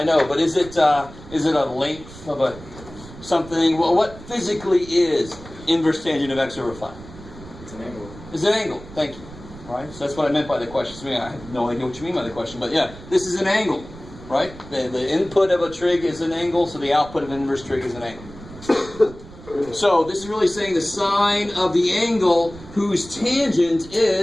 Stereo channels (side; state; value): right; noise; rumble, 17 dB below the sound